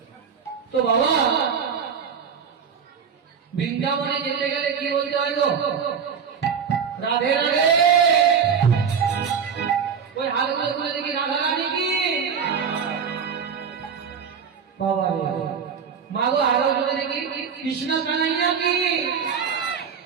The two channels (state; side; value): quieter; left; 6.7 dB